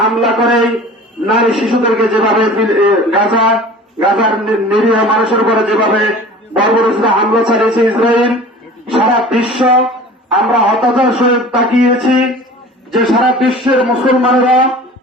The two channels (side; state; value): both; normal; correlation 0.42